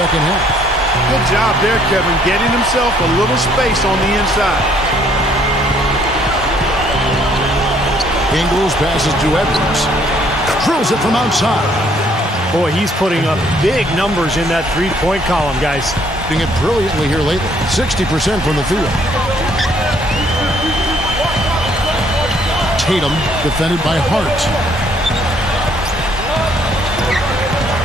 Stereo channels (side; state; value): both; normal; correlation 0.64